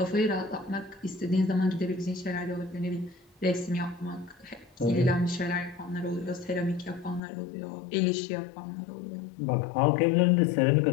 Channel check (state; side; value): drops out; right; at 7.2 s